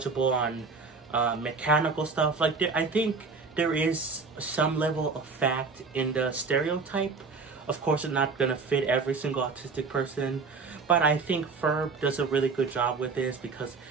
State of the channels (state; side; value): quieter; left; 4.6 dB